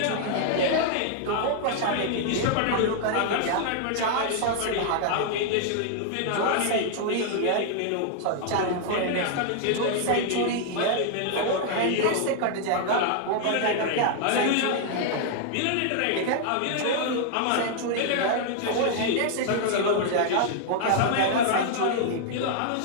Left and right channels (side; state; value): both; different; correlation 0.00